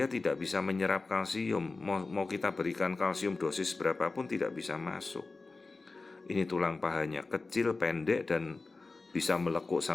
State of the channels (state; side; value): quieter; right; 3.7 dB